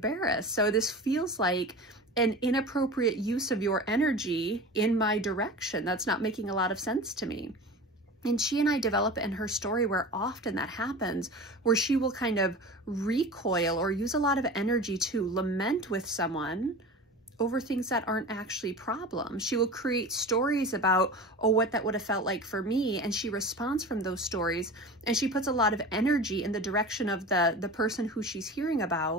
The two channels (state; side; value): normal; both; correlation 0.33